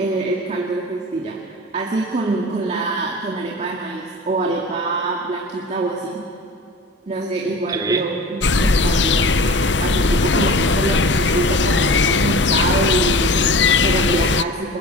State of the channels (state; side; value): normal; both; correlation 0.37